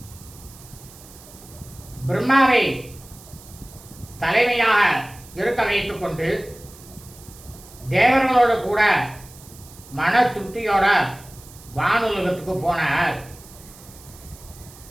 பிரம்மாவை தலைமையாக இருக்க வைத்துக் கொண்டு தேவர்களோடு கூட மன திருப்தியோட வானுலகத்துக்கு போனார்.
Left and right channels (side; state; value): right; noise; hiss, 21 dB below the sound